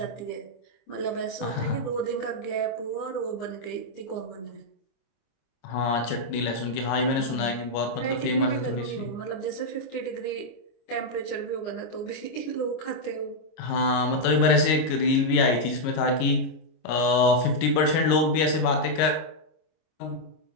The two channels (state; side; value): late; right; 26 ms